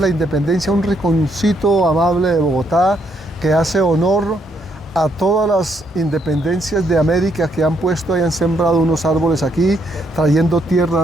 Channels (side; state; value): both; normal; correlation 0.74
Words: la Independencia, un rinconcito amable de Bogotá que hace honor a todas las independencias de América que han puesto y han sembrado unos árboles aquí, trayendo